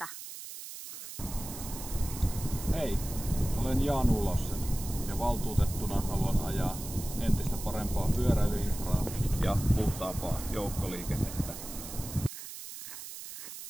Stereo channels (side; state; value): right; noise; hiss, 11 dB below the sound